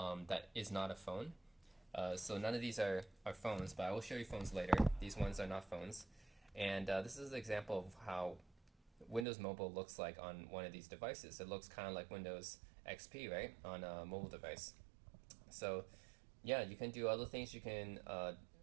that is not a phone. So none of these are phones, but I will show you phones later. These ones are not phones. And this is an example of how Windows Mobile looks like on one of these devices. It looks kind of like Windows XP, right, on a mobile device. So yeah, you can do other things you can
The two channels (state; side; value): drops out; left; at 9.2 s